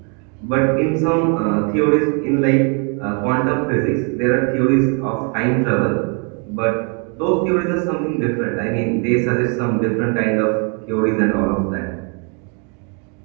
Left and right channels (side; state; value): left; quieter; 37.4 dB